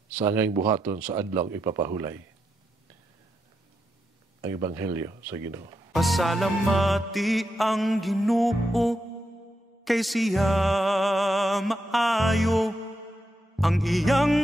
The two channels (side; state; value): both; normal; correlation 0.84